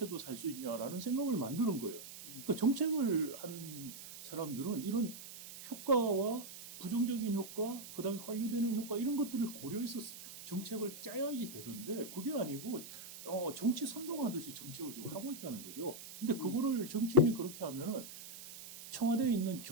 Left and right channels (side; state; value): right; noise; hiss, 13 dB below the sound